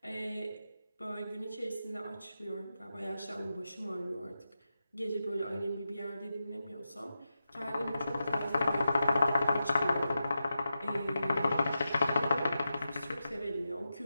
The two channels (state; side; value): inverted; both; correlation -0.90